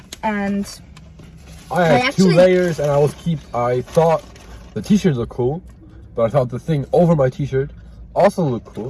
And I had 2 layers, and I thought the t-shirts looked cool, but I thought the thing over my t-shirt also looked cool,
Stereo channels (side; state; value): both; identical; correlation 1.00